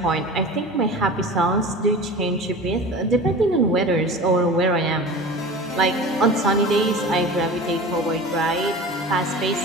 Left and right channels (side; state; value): both; normal; correlation 0.35